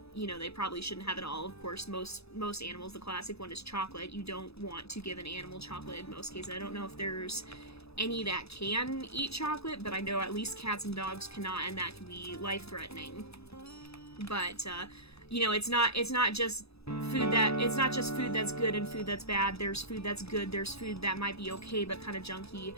you know, they probably shouldn't have at all. Of course, most animals, the classic one is chocolate. You don't want to give an animal chocolate in most cases. I don't know if there's any that can eat chocolate, but I know at least cats and dogs cannot, and that can be life-threatening. But, you know, it's not just food that's good and food that's bad. There's food that's good, there's food that might be okay but kind of junky,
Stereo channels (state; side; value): late; right; 0.78 ms